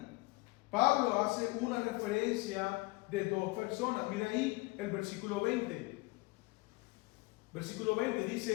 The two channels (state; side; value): quieter; right; 24.8 dB